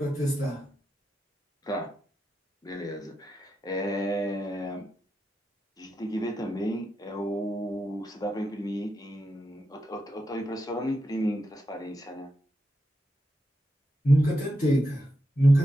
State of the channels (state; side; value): normal; both; correlation 0.86